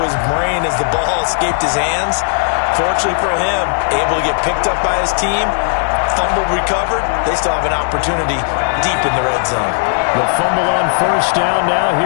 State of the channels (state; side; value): silent; right; digital silence